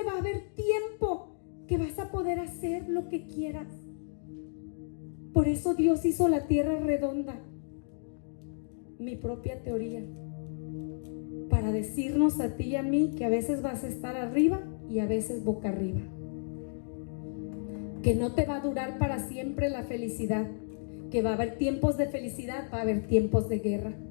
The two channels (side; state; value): right; silent; digital silence